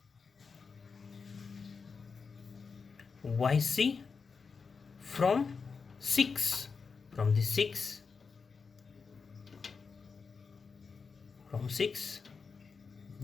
YC from 6. From the 6,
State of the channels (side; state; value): right; quieter; 5.2 dB